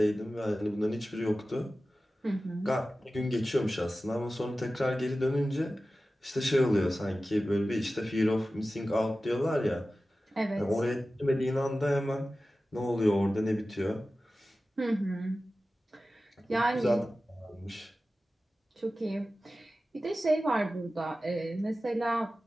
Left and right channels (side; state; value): both; normal; correlation 0.95